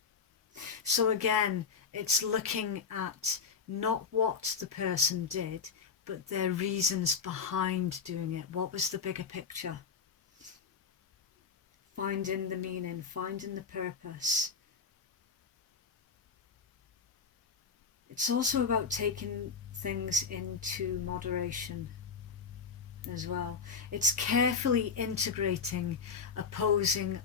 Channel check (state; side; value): quieter; right; 5.6 dB